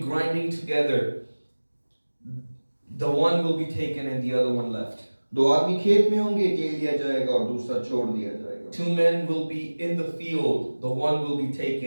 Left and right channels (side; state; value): both; inverted; correlation -1.00